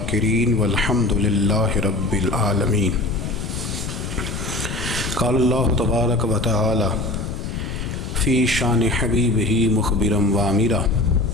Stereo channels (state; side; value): noise; left; rumble, 5 dB below the sound